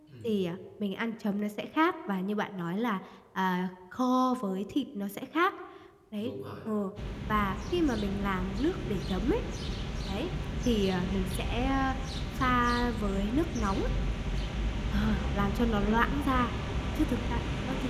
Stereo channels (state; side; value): identical; both; correlation 1.00